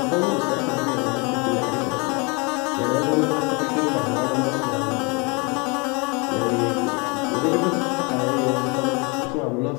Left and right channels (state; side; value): quieter; right; 30.1 dB